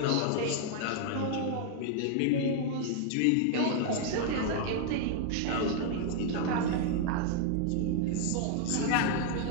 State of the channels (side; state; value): both; different; correlation 0.00